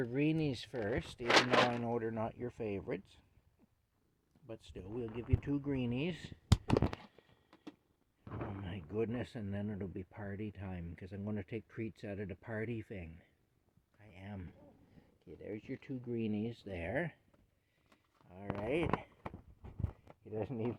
greenies first, even though I know they're not your favorites. But still, we'll give you 2 greenies. Oh my goodness, and then it'll be party time, because I'm going to take treats out of the party thing. I am. Okay, there's your 2 greenies there. Alright. He doesn't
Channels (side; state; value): both; identical; correlation 1.00